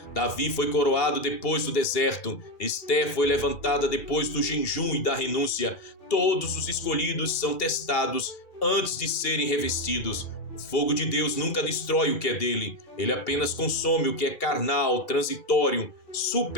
Davi foi coroado depois do deserto. Esther foi levantada depois do jejum e da renúncia. Todos os escolhidos são testados antes de serem revestidos. O fogo de Deus nunca destrói o que é dele. Ele apenas consome o que é carnal, transitório,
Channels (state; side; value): late; right; 2.4 ms